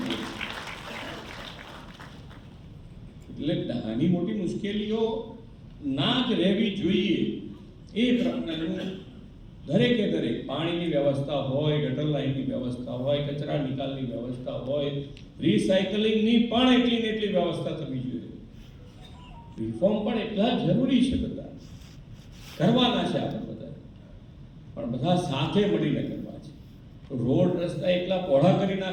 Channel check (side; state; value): both; identical; correlation 1.00